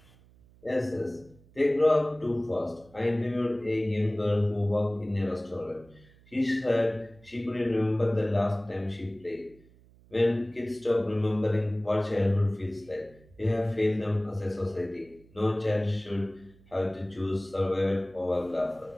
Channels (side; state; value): right; noise; hum, 27 dB below the sound